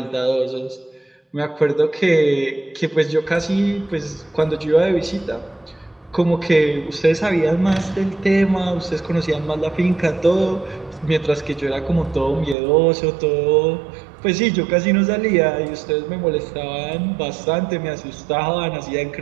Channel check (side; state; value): left; drops out; at 12.6 s